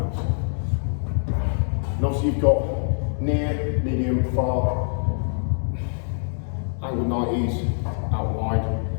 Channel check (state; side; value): silent; right; digital silence